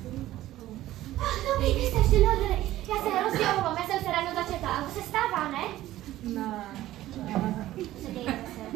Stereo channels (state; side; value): quieter; left; 14.8 dB